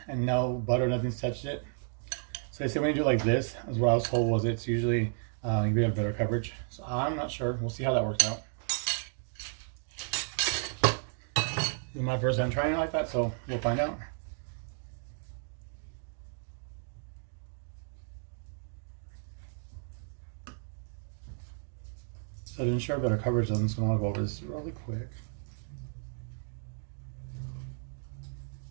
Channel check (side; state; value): left; silent; 56 dB below the other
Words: and no butter, nothing's touched it. So they say when you do like this, as what I was told was it's usually you have better coverage. So I'm not sure. We'll see how that works out. This is my first time trying it like that, so we'll find out. So to ensure better coverage, I'm just going to go over this really quick.